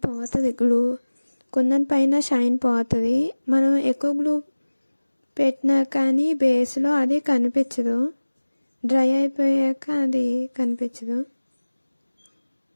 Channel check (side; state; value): both; inverted; correlation -1.00